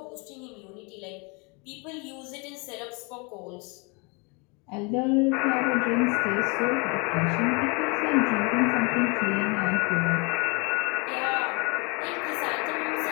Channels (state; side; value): quieter; right; 31.0 dB